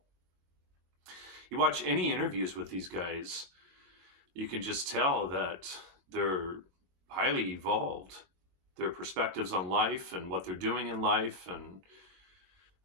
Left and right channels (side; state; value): left; late; 21 ms